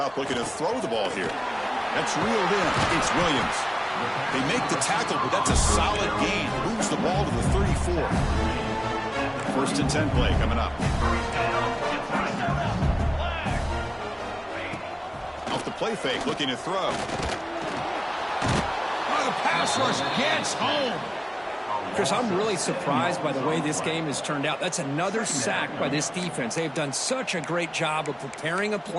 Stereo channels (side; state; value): both; identical; correlation 1.00